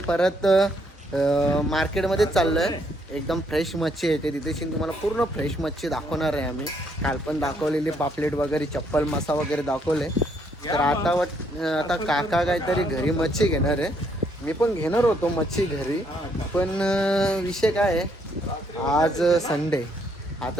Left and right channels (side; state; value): both; normal; correlation 0.71